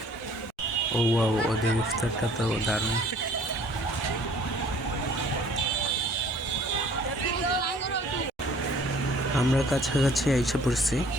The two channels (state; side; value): normal; both; correlation 0.54